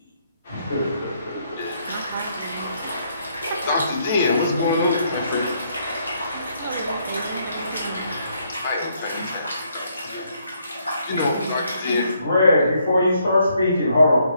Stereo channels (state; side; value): inverted; both; correlation -0.72